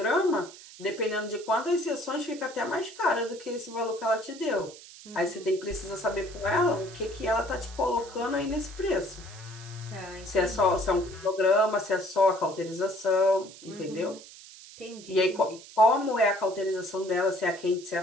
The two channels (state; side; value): noise; right; hiss, 18 dB below the sound